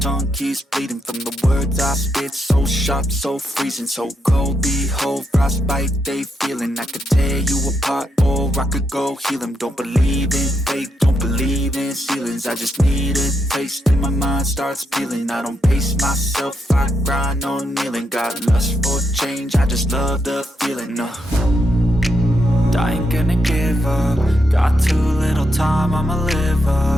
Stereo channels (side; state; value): both; normal; correlation 0.81